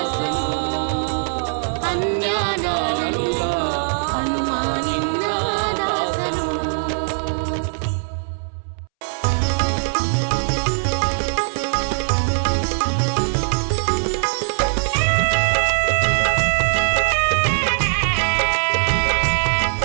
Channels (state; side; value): silent; left; 65 dB below the other